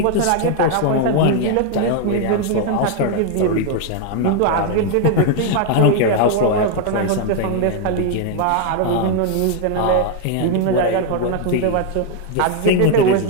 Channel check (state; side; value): different; both; correlation 0.00